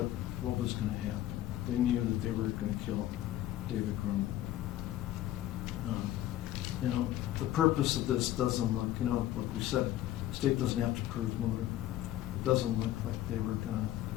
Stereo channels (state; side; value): quieter; right; 13.6 dB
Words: was going to happen. They knew that they were going to kill David Grunwald. The purpose of this doesn't look, like we said, the state doesn't have to prove motive. doesn't look like